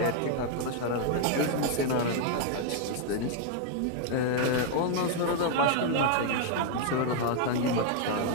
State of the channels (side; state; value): both; different; correlation 0.00